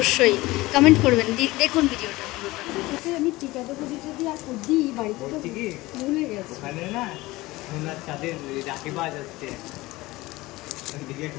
কমেন্ট করবেন। দেখুন ভিডিওটা আমি টিকাটা যদি আর দিই বাড়িতে ভুলে গেছি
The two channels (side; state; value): right; quieter; 19.8 dB